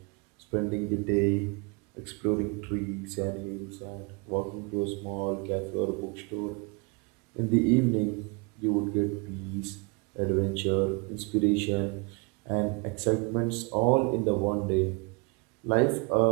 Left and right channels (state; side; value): quieter; left; 31.0 dB